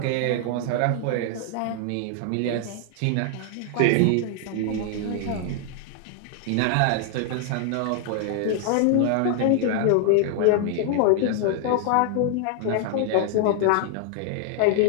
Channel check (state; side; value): different; both; correlation 0.00